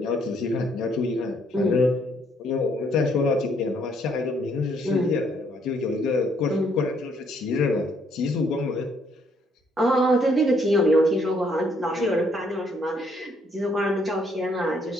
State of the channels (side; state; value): both; normal; correlation 0.68